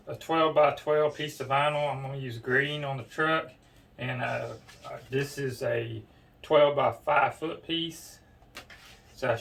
a 12 by 12 piece of vinyl. I'm going to use green on the truck, and this is a 12 by 5 foot piece, so I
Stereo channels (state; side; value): identical; both; correlation 1.00